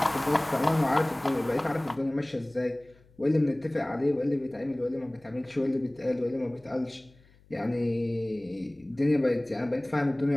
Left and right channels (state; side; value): noise; left; hum, 28 dB below the sound